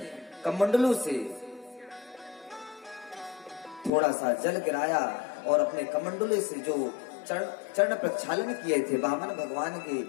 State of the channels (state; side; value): drops out; right; at 3.9 s